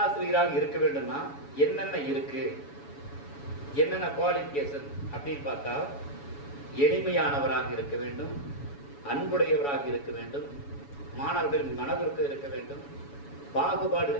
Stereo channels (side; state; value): right; late; 7.1 ms